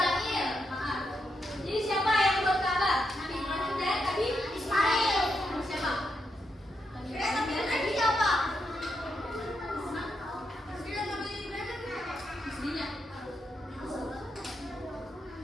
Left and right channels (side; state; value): both; normal; correlation 0.83